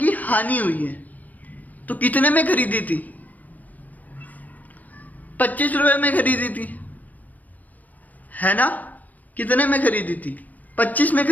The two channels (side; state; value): right; late; 0.080 ms